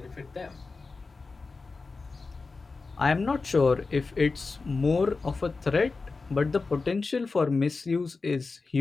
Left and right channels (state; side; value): quieter; right; 4.1 dB